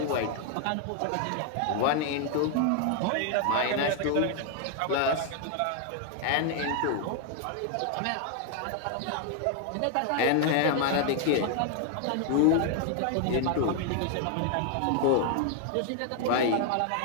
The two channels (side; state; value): both; different; correlation 0.00